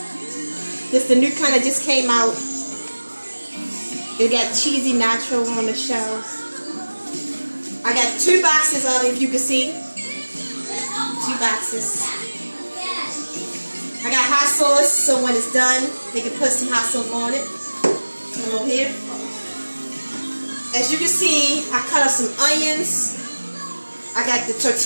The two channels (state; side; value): inverted; both; correlation -1.00